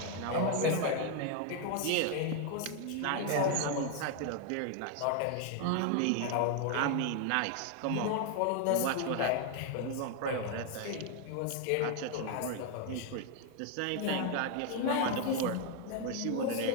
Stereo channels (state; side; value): different; both; correlation 0.00